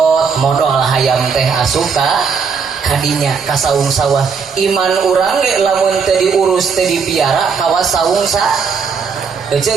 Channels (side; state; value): left; quieter; 5.8 dB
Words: modal hayam teh asup kadinya ka saung sawah iman urang ge lamun teu diurus teu dipiara kawas saung sa euy